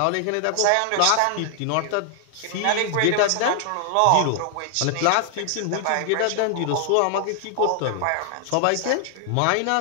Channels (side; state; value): both; different; correlation 0.00